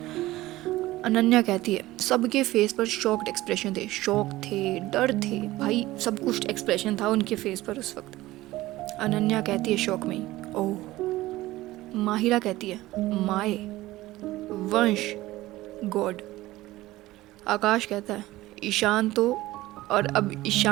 अनन्या कहती है, सबके फेस पर शॉक्ड एक्सप्रेशन थे, शॉक थे, डर थे, भाई सब कुछ एक्सप्रेशन था उनके फेस पर उस वक्त। अनन्या कहती है शॉक में, ओह। माहिरा कहती है, माए, वंश, गॉड। आकाश कहता है, ईशान तो। और अब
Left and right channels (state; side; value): quieter; left; 17.4 dB